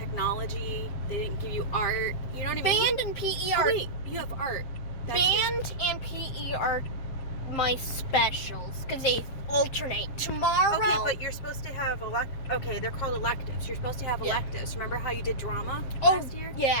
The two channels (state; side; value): late; right; 7.6 ms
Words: They didn't give you art. You know what I mean? Band and PE are... Oh, wait, you have art. Band and PE are my specials, because they alternate. Tomorrow... Okay, but you're supposed to have okay, they're called electives. You're supposed to have electives. Remember how you did drama last year?